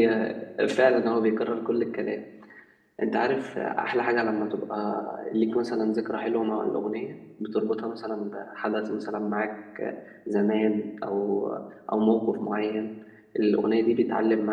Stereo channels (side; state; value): both; identical; correlation 1.00